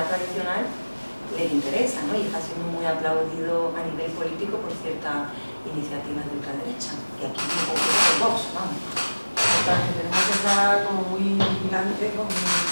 tradicional les interesa, ¿no? Y está siendo muy aplaudido a nivel político por ciertas iniciativas de ultraderecha, y aquí un poco de Vox, vamos. Totalmente, tenemos que estar como muy vigilantes con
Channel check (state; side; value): inverted; both; correlation -1.00